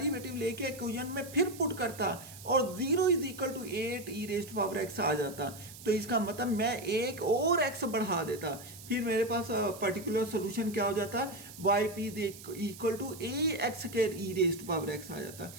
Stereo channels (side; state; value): right; noise; hiss, 16 dB below the sound